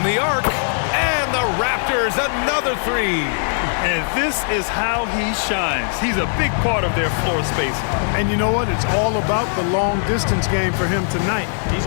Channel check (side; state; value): right; silent; digital silence